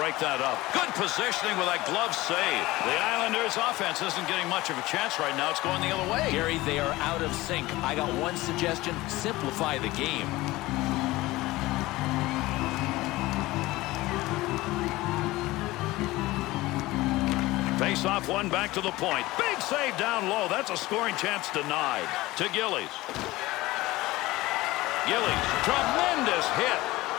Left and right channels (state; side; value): quieter; right; 19.0 dB